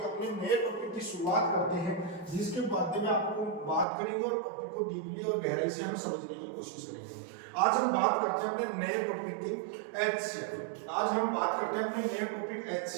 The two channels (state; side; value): drops out; left; at 3.9 s